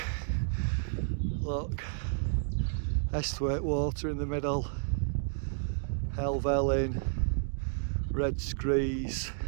Look, Esthwaite water in the middle, Helvellyn, Red Screes.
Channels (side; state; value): left; silent; digital silence